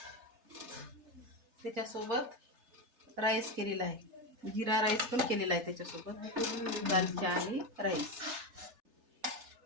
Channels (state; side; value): late; left; 3.3 ms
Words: त्याच्यासोबत राईस केलेला आहे, जिरा राईस पण केलेला आहे त्याच्यासोबत, दालचा आणि राईस।